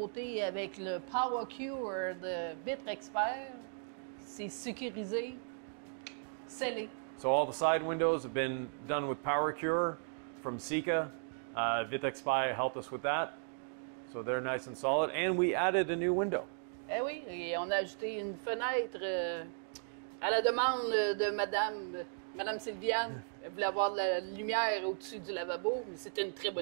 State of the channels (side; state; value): left; silent; digital silence